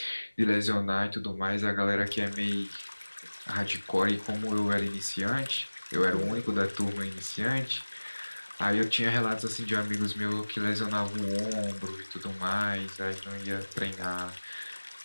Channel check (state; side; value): inverted; both; correlation -1.00